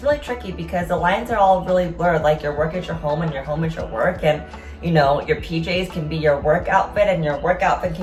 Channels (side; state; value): both; identical; correlation 1.00